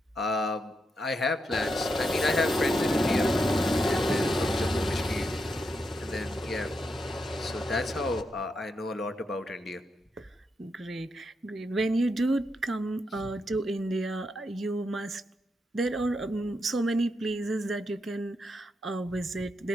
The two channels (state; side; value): normal; both; correlation 0.83